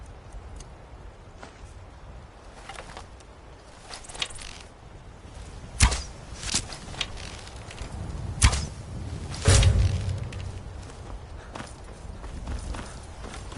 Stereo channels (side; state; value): both; identical; correlation 1.00